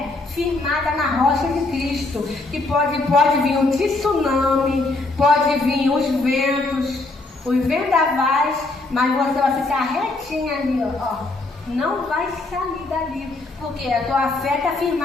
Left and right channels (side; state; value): right; quieter; 3.2 dB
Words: firmada na rocha de Cristo, que pode vir um tsunami, pode vir os vendavais, mas você vai ficar retinha ali, ó. Não vai sair dali, porque a tua fé está